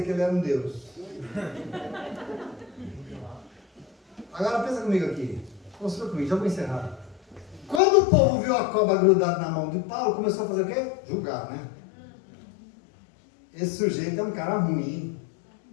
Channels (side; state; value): right; drops out; at 7.8 s